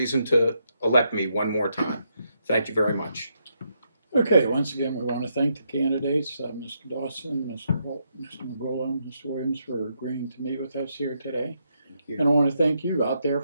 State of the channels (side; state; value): both; inverted; correlation -0.79